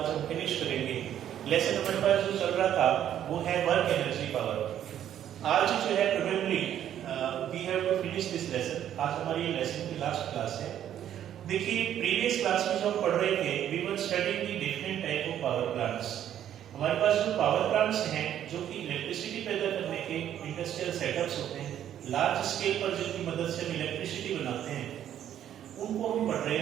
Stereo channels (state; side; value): quieter; left; 10.7 dB